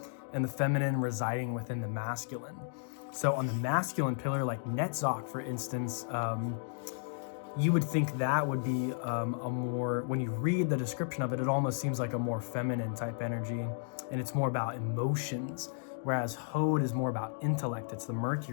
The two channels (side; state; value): right; silent; digital silence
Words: and the feminine residing within the masculine. So on the masculine pillar, like Netzach, for instance, you would think that would be a more, when you read the description of it, it almost seems like a more feminine type energy, and it's more about emotions. whereas Hod is more about intellect. It's the